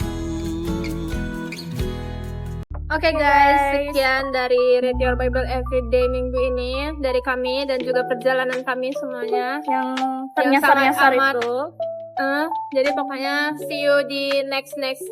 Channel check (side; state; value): both; identical; correlation 1.00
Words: Oke guys, sekian dari Read Your Bible Everyday minggu ini dari kami dan juga perjalanan kami semuanya yang yang ternyasar-nyasar sangat amat. itu. Jadi pokoknya see you di next